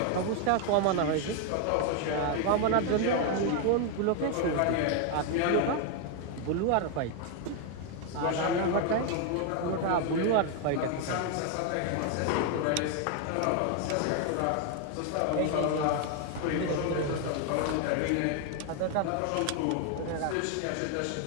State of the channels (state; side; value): different; both; correlation 0.01